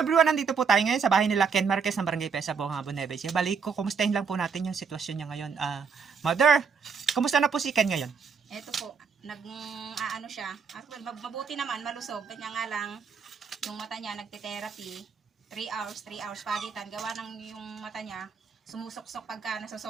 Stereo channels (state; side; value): quieter; left; 5.8 dB